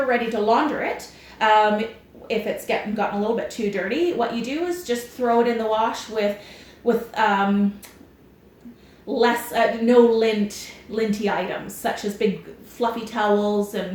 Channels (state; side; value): identical; both; correlation 1.00